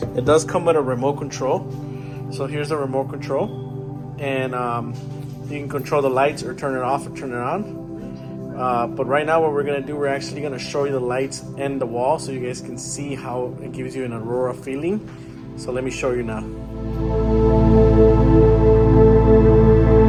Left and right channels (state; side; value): identical; both; correlation 1.00